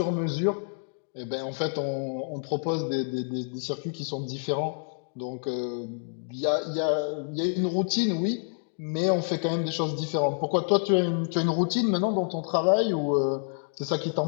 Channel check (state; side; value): silent; right; digital silence